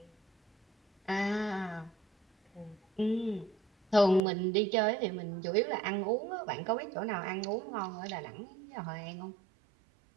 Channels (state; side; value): drops out; left; at 4.2 s